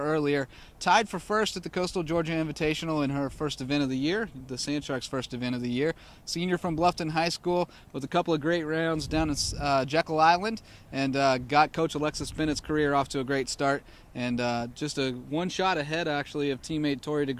earlier. Tied for first at the Coastal Georgia Invitational in her first event of the year, the Sand Sharks' first event of the year. Senior from Bluffton High School with a couple of great rounds down in Jekyll Island, and got Coach Alexis Bennett's career off to a great start. And just a 1 shot ahead, actually, of teammate Tori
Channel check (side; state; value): both; identical; correlation 1.00